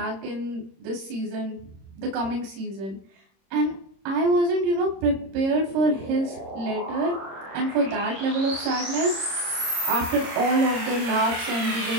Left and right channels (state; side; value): late; left; 26 ms